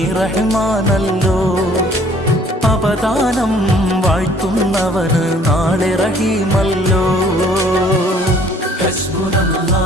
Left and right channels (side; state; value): both; normal; correlation 0.57